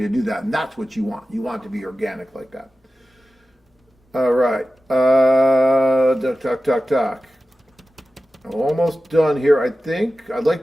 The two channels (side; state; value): both; normal; correlation 0.94